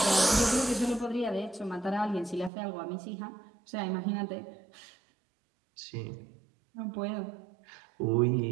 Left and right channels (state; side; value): drops out; left; at 2.5 s